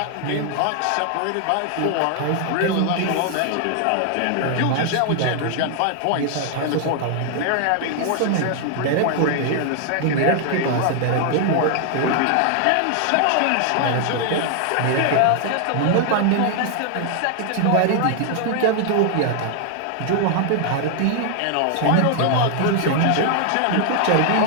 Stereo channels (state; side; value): different; both; correlation 0.00